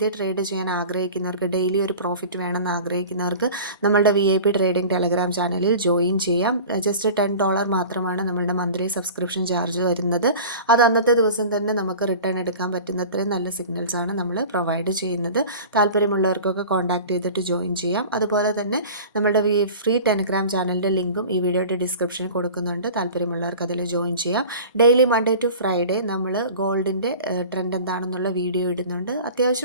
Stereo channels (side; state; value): both; inverted; correlation -0.39